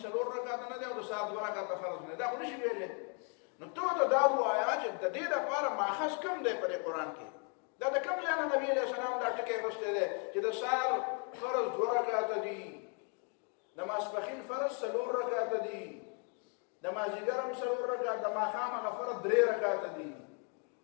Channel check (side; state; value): right; quieter; 38.2 dB